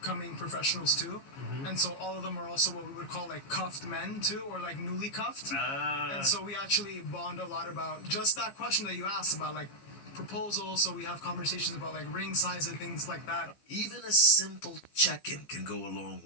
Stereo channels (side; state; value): right; late; 15 ms